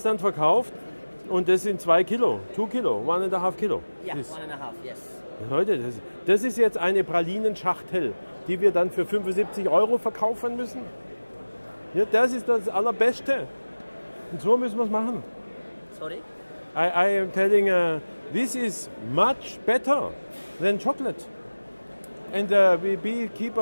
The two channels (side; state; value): both; inverted; correlation -1.00